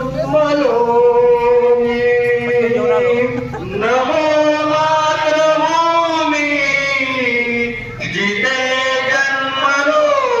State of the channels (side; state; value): both; identical; correlation 1.00